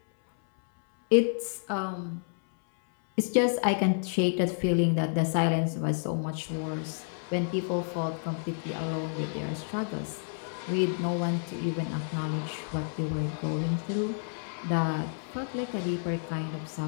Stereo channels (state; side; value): silent; right; 58 dB below the other